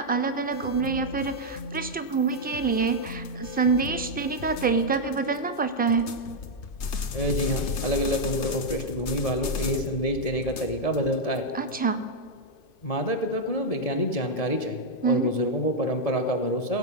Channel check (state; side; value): late; right; 3.3 ms